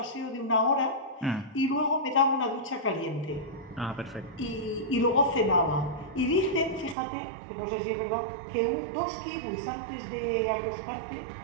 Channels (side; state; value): left; drops out; at 7.0 s